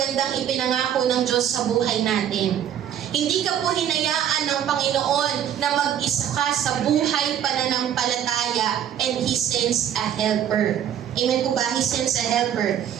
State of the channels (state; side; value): quieter; left; 9.9 dB